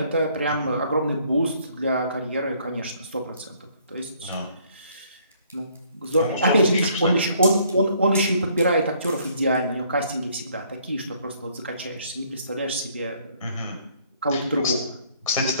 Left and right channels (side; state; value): both; inverted; correlation -0.63